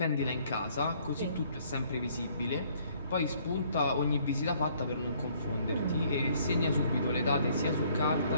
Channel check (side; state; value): both; inverted; correlation -0.62